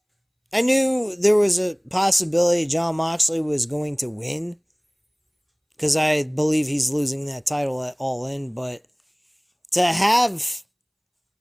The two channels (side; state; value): both; identical; correlation 1.00